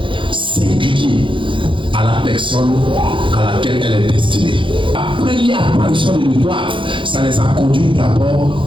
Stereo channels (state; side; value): late; left; 0.24 ms